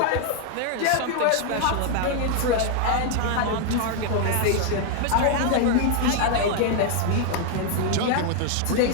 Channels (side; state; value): both; different; correlation 0.00